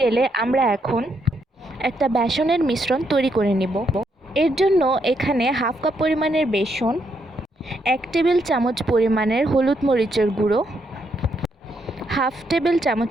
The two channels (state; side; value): normal; both; correlation 0.77